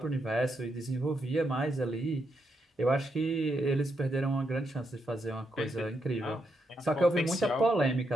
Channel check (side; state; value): both; normal; correlation 0.81